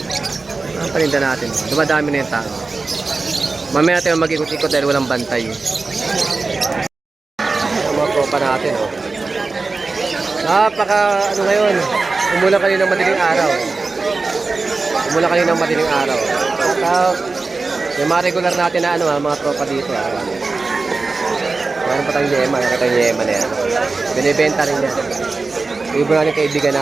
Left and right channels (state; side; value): quieter; left; 3.9 dB